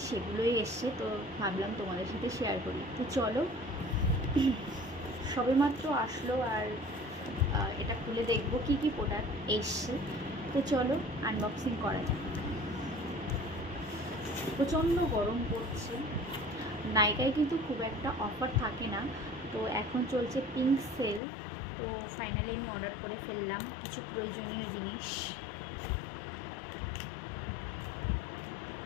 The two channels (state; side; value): drops out; right; at 21.2 s